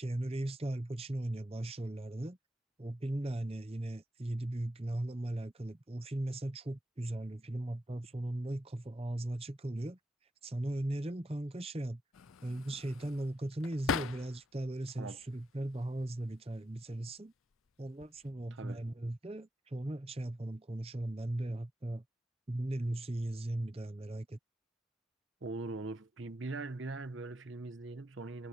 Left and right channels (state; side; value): normal; both; correlation 0.86